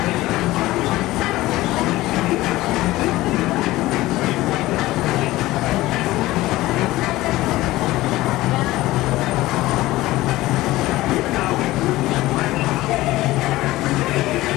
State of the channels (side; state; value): right; quieter; 17.7 dB